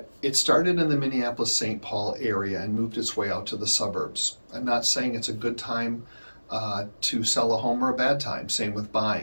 it started in the Minneapolis-St. Paul area and moved its way out to the suburbs. I'm not saying it's a good time to sell a home or a bad time, same with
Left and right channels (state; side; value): inverted; both; correlation -1.00